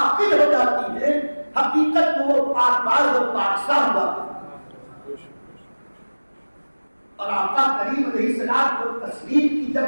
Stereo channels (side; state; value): both; inverted; correlation -1.00